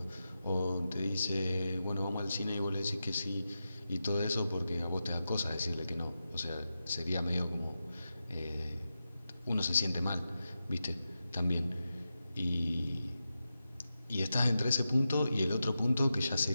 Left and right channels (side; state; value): both; inverted; correlation -0.90